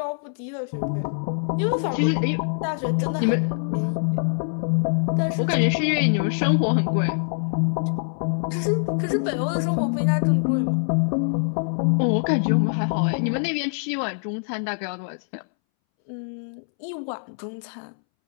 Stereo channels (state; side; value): silent; right; 63 dB below the other